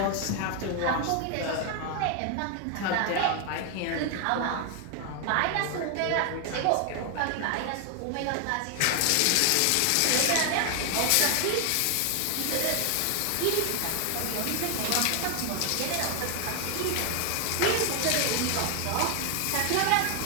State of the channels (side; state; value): both; different; correlation 0.00